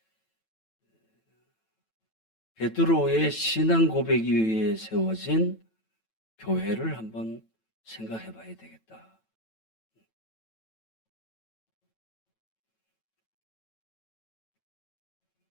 베드로의 신앙 고백 위에 세워진 교회를 한번 생각해 봐야 되겠다.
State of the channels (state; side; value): late; right; 9.0 ms